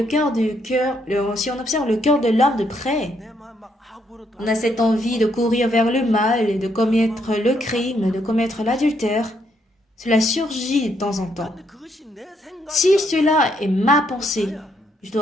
on observe le cœur de l'homme de près, on a cette envie de courir vers le mal et de commettre le crime, de commettre l'adultère. Cela surgit de temps en temps. Si cela est ma pensée, je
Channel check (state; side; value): normal; both; correlation 0.74